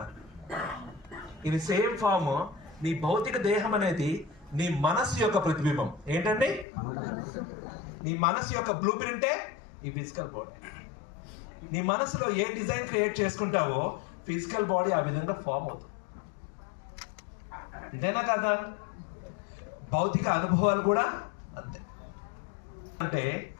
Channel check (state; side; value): drops out; right; at 6.7 s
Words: ఇది సేమ్ ఫామ్. నీ భౌతిక దేహం అనేది నీ మనస్సు యొక్క ప్రతిబింబం. ఏంటండి? నీ మనస్సు యొక్క బ్లూ ప్రింటే ఈ ఫిజికల్ బాడీ. నీ మనసులో ఏ డిజైన్ క్రియేట్ చేసుకుంటావో ఫిజికల్ బాడీ ఆ విధంగా ఫామ్ అవుతుంది. అంతేనా కదా? భౌతిక అనుభవాలు కూడా అంతే. అంటే